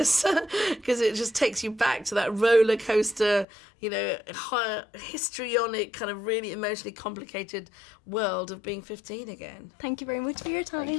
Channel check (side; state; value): right; drops out; at 3.5 s